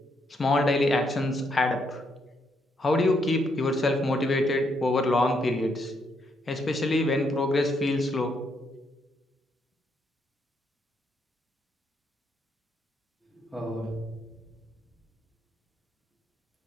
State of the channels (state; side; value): normal; both; correlation 0.76